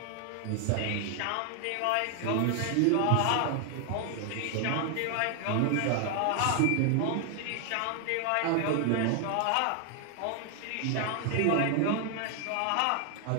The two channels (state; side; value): different; both; correlation 0.00